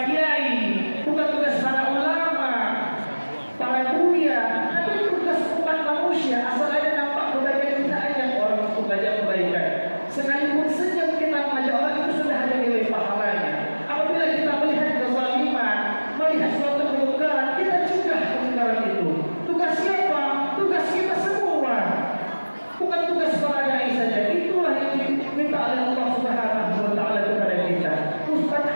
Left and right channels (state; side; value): inverted; both; correlation -1.00